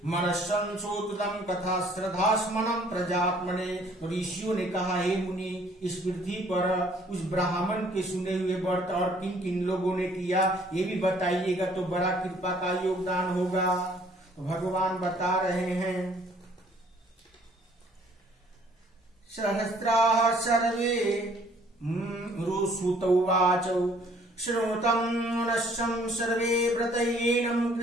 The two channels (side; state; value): both; normal; correlation 0.59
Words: मनस्संशोधितं कथा श्रद्धास्मनं प्रजात्मने। ऋषियों ने कहा, हे मुनि, इस पृथ्वी पर उस ब्राह्मण के सुने हुए व्रत और किन किन लोगों ने किया ये भी बताइएगा तो बड़ा कृपा का योगदान होगा। तो भगवान बता रहे हैं, सहस्राः सर्वे रुसुत उवाच श्रोतं नश्यं सर्वे व्रतयेनं